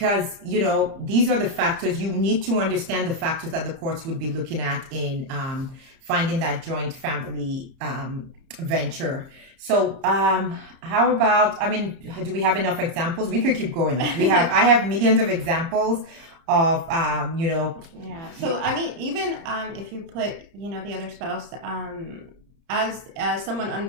these are the factors. You need to understand the factors that the courts would be looking at in finding that joint family venture. So how about, do we have enough examples? We could keep going. I have millions of examples of Yeah. So even if you put the other spouse as someone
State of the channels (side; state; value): left; late; 30 ms